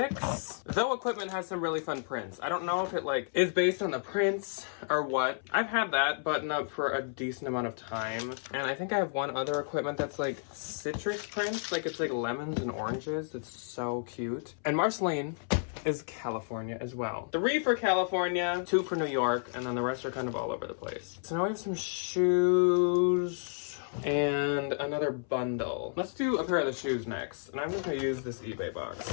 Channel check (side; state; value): right; silent; 57 dB below the other